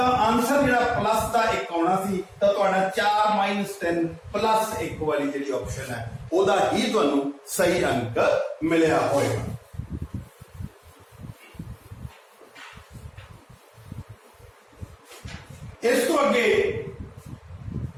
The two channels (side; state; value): both; identical; correlation 1.00